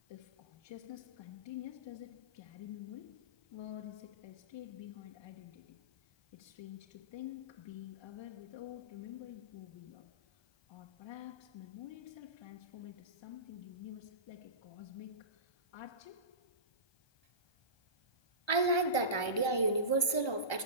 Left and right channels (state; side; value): late; right; 1.3 ms